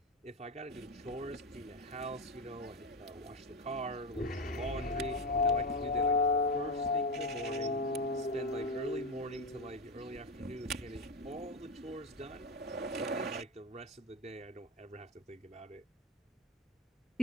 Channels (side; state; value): both; normal; correlation 0.15